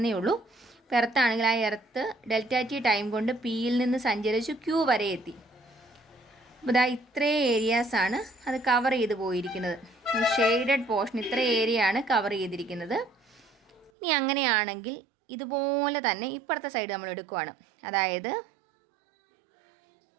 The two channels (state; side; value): drops out; left; at 13.9 s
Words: ഉള്ളൂ. ഇപ്പോൾ എർത്താണെങ്കിൽ ആ എർത്ത് ഡെൽറ്റ ടി ടൈം കൊണ്ട് പിയിൽ നിന്ന് സഞ്ചരിച്ച് ക്യൂ വരെ എത്തി. അപ്പോൾ ഇതാ ഇത്രയും ഏരിയാസാണ് അത് കവർ ചെയ്ത് പോയിരിക്കുന്നത്. ഈ ഷെയ്ഡഡ് പോർഷൻ ഇത്ര ഏരിയ ആണ് കവർ ചെയ്തിരിക്കുന്നത്. ഇനി അങ്ങനെയാണെങ്കിൽ ഇതുപോലെ തന്നെ ഇപ്പുറത്തെ സൈഡ് നമ്മൾ എടുക്കുവാണ്. അതായത്